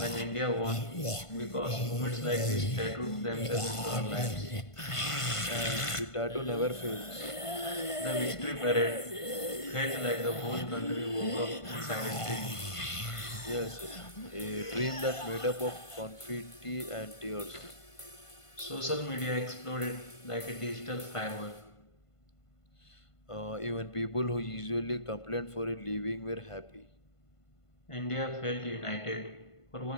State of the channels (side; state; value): right; late; 1.5 ms